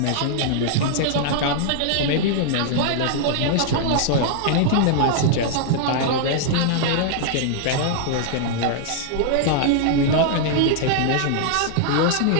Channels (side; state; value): both; different; correlation -0.01